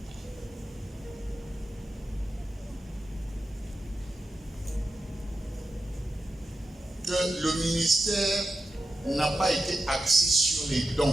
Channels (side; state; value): both; normal; correlation 0.89